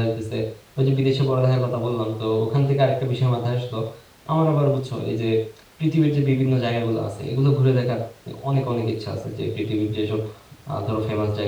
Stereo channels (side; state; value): both; identical; correlation 1.00